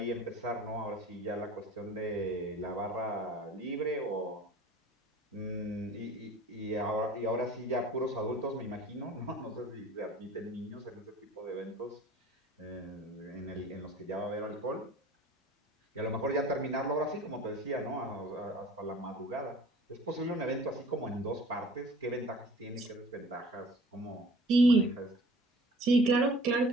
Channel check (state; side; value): normal; both; correlation 0.47